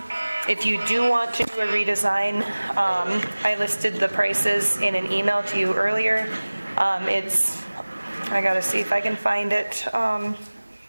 If you do want to do a redesign, I listed the prices in an email to you earlier. I gotta see if I can find it.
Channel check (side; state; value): both; inverted; correlation -1.00